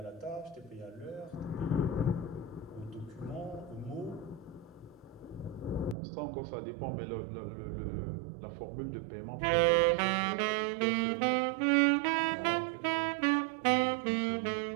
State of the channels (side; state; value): left; drops out; at 6.0 s